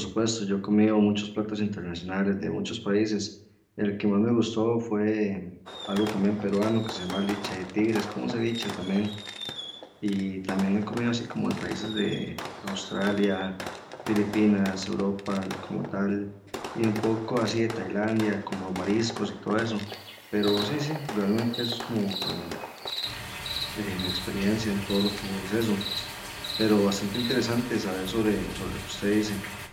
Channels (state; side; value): identical; both; correlation 1.00